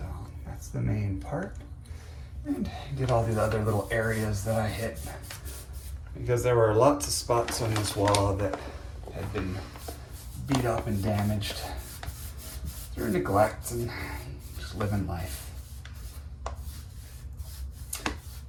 that's the main part. And get all the other little areas that I hit, because there were lots of spots on this wall that had been beat up and damaged through neglect and just living life.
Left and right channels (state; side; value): identical; both; correlation 1.00